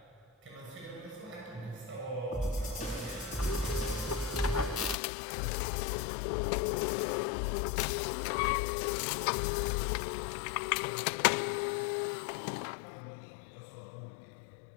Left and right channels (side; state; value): right; drops out; at 5.0 s